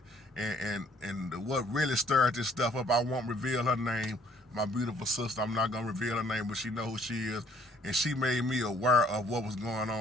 And what really stirred this stuff up, I won't reveal her name. My beautiful sister, I'm not gonna reveal her name, but she know who she is, and she made me aware of what was going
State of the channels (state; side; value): normal; both; correlation 0.61